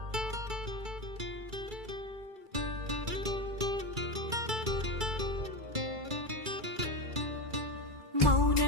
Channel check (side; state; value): left; late; 2.3 ms